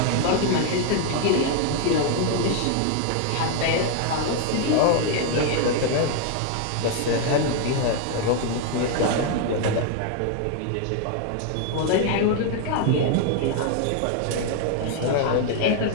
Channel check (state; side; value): different; both; correlation 0.00